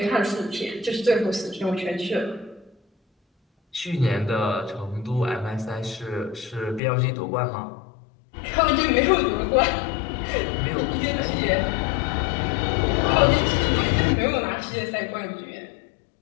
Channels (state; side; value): drops out; right; at 6.8 s